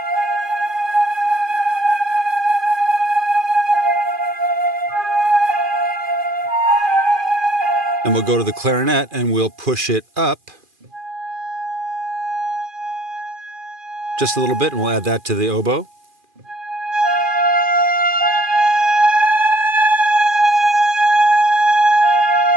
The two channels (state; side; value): late; left; 2.4 ms